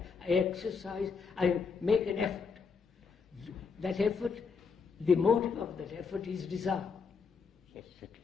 I make an effort. That effort, the motive of that effort is desire. Yes, certainly.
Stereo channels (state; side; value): quieter; right; 5.3 dB